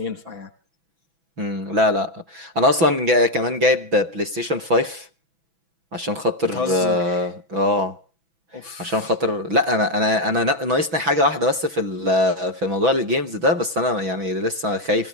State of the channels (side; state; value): left; late; 6.0 ms